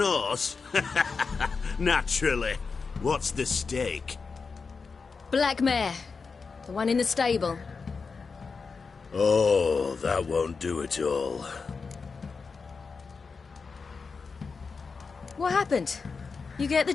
horse? Naturally. What's the stake? Black mare. The one in the stable. Oh, that won't do at all. What happened? You get the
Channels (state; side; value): quieter; right; 4.9 dB